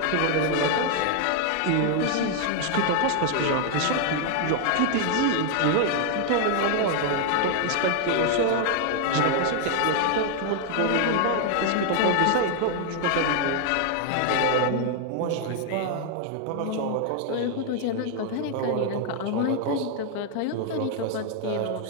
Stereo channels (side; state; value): both; different; correlation 0.00